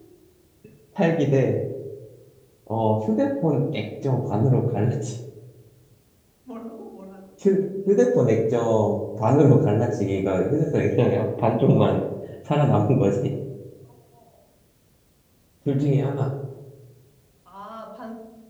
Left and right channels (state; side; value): identical; both; correlation 1.00